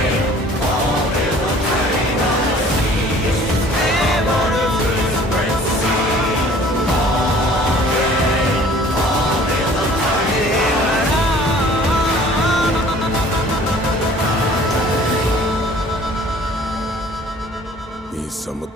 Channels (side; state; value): both; normal; correlation 0.51